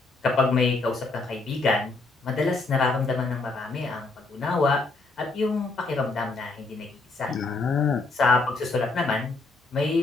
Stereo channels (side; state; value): right; quieter; 3.5 dB